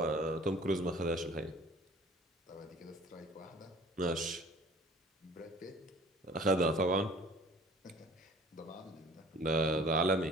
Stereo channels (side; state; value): both; normal; correlation 0.49